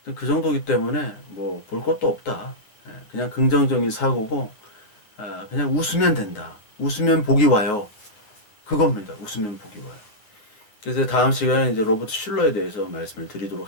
그 정도기 때문에 뭐 볼 것도 없다. 그냥 긍정적인 사고고 그냥 웃으면 된다. 웃으면 복이 와요. 그겁니다. 웃으면 복이 와요. 그래서 다음 시간에 이제 로버트 슐러에 대해서 말씀을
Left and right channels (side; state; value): right; late; 9.4 ms